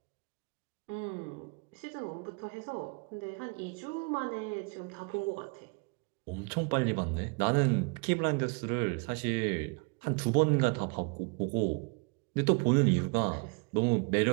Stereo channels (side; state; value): left; quieter; 33.4 dB